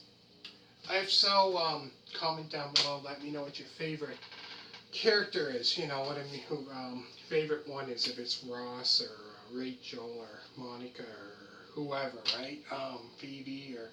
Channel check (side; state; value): both; identical; correlation 1.00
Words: If so, comment down below. Let me know what your favorite character is. You know what I mean? Who favorite one is? If it's Ross or Rachel or Monica or whoever, right? Phoebe or